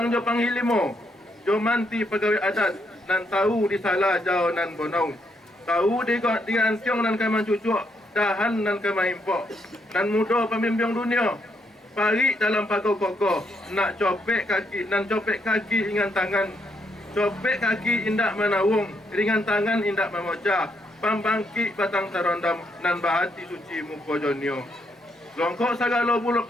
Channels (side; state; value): both; normal; correlation 0.76